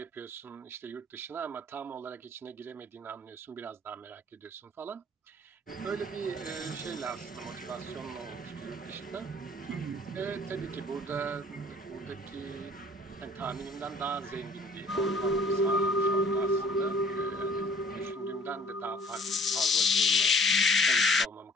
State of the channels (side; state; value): both; normal; correlation 0.54